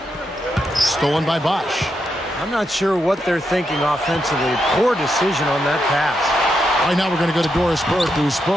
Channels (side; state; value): both; normal; correlation 0.83